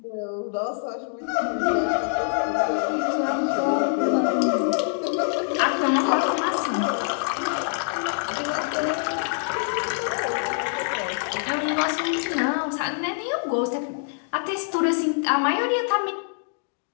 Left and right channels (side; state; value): right; silent; digital silence